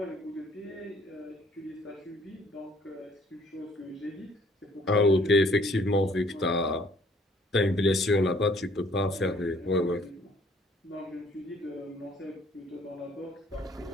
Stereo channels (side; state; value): both; normal; correlation 0.59